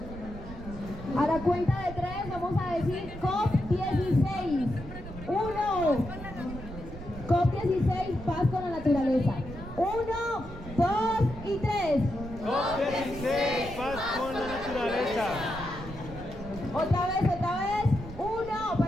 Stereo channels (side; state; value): right; noise; rumble, 12 dB below the sound